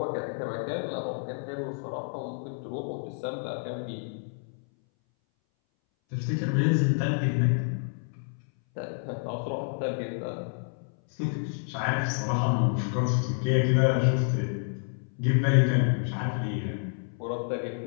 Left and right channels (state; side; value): silent; right; 59 dB below the other